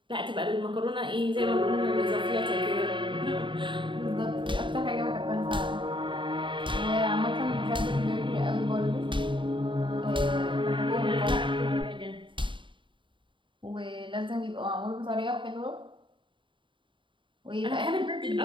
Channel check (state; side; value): late; left; 0.24 ms